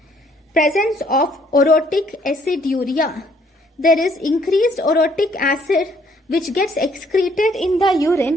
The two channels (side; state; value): both; normal; correlation 0.65